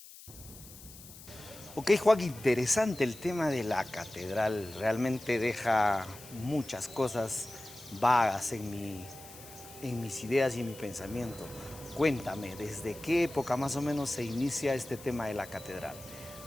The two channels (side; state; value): left; noise; hiss, 18 dB below the sound